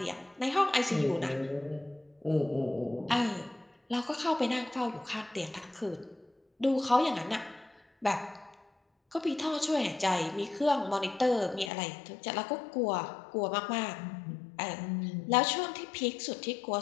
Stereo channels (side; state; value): right; drops out; at 11.7 s